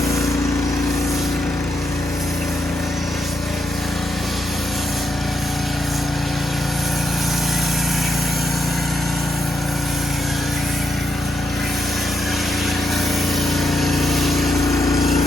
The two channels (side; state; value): both; normal; correlation 0.81